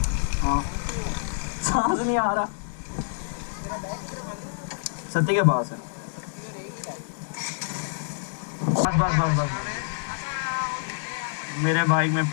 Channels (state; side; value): silent; right; 60 dB below the other